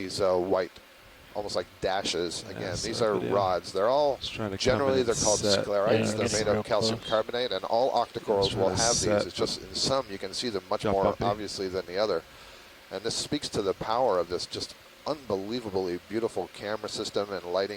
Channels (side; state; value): both; identical; correlation 1.00